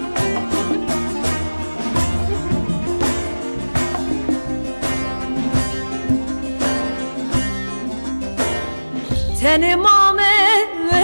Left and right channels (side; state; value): both; inverted; correlation -1.00